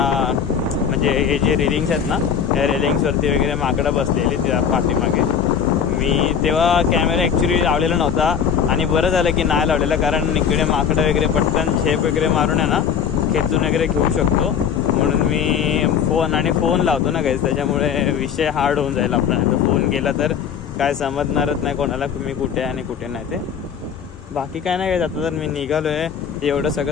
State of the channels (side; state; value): right; quieter; 7.6 dB